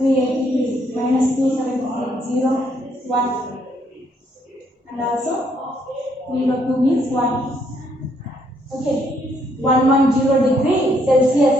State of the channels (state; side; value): normal; both; correlation 0.71